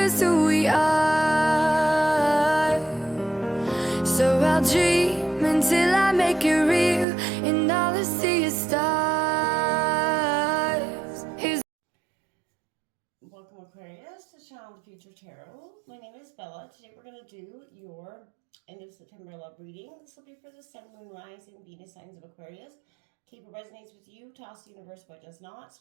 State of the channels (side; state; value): left; drops out; at 7.1 s